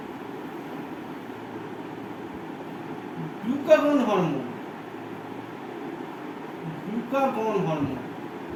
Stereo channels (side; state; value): both; identical; correlation 1.00